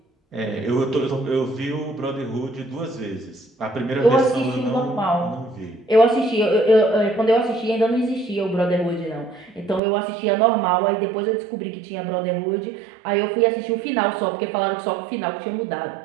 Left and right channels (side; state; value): left; drops out; at 9.8 s